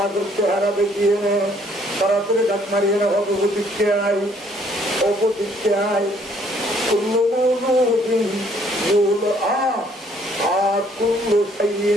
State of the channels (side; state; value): both; normal; correlation 0.63